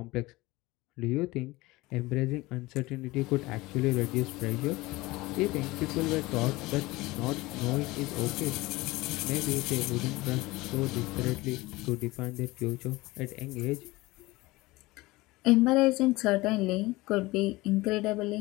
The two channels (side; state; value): right; quieter; 20.7 dB